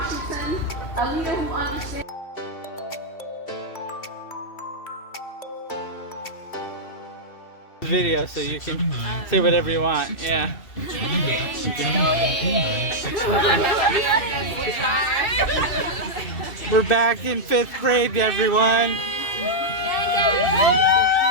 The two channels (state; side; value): late; right; 2.7 ms